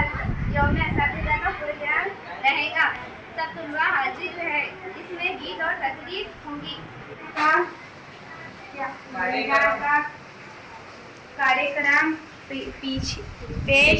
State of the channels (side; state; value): both; identical; correlation 1.00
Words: असातिज़ा का प्रोग्राम रहेगा। सब तुलवा हाजिर है। इसमें गीत और तकरीर होंगी। कार्यक्रम